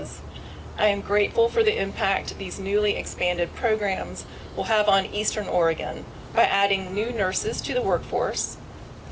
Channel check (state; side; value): identical; both; correlation 1.00